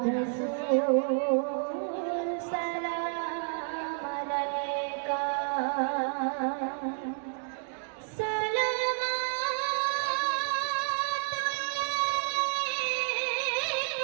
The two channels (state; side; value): silent; left; digital silence